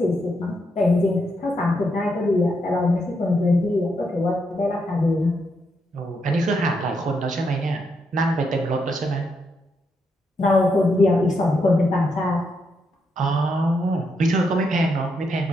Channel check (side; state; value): both; normal; correlation 0.80